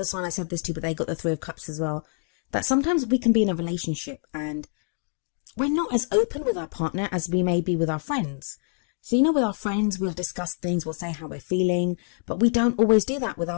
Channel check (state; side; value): silent; right; 56 dB below the other